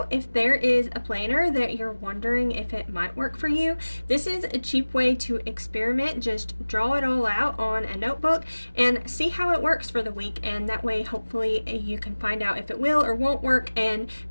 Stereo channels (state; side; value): inverted; both; correlation -1.00